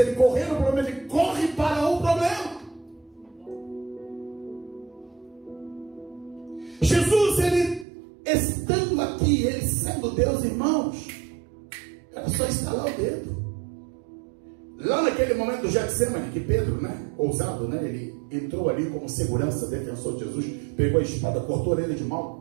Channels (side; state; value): left; drops out; at 7.9 s